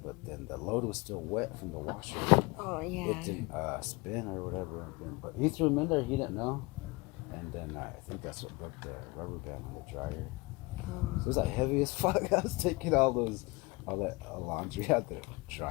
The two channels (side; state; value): right; quieter; 24.8 dB